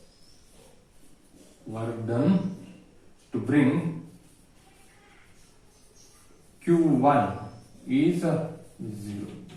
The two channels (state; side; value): identical; both; correlation 1.00